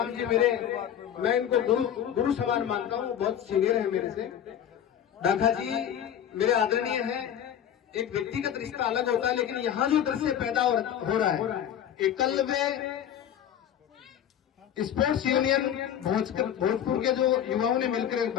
जी मैं इनको गुरु समान मानता हूँ, बहुत सीनियर है मेरे से। ढाका जी मेरे आदरणीय हैं। एक व्यक्तिगत रिश्ता अलग होता है, लेकिन यहाँ जो दृश्य पैदा हो रहा है, एकलव्य स्पोर्ट्स यूनियन भोजपुर के जो युवाओं ने मिलकर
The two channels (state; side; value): quieter; right; 9.8 dB